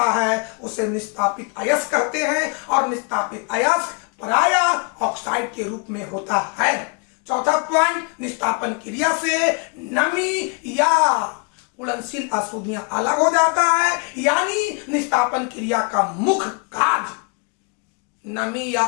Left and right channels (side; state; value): right; quieter; 36.1 dB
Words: है उसे निस्तापित अयस्क कहते हैं, और निस्तापित अयस्क प्रायः ऑक्साइड के रूप में होता है। चौथा पॉइंट, निस्तापन क्रिया से नमी या उड़नशील अशुद्धियां अलग हो जाता है, यानी निस्तापन क्रिया का मुख्य कार्य नमी या